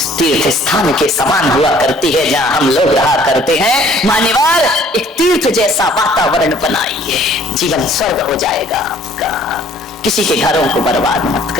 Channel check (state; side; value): normal; both; correlation 0.57